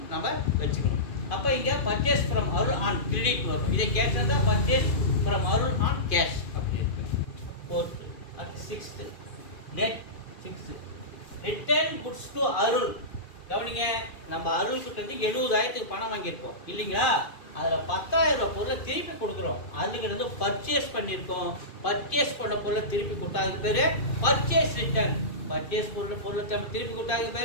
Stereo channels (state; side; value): late; right; 2.5 ms